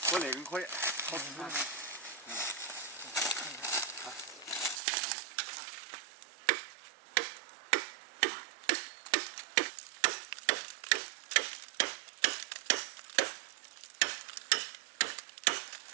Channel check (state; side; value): drops out; left; at 4.8 s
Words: 我那个可以，好吃。